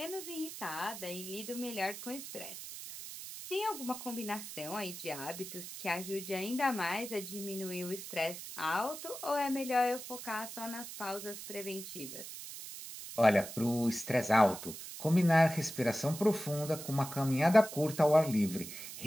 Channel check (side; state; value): right; noise; hiss, 10 dB below the sound